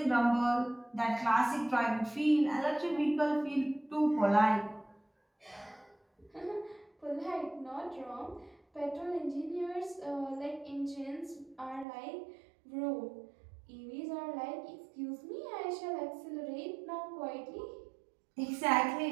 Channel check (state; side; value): drops out; left; at 11.9 s